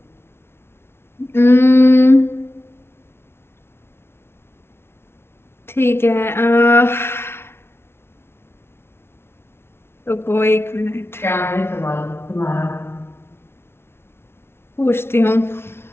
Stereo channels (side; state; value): right; late; 0.12 ms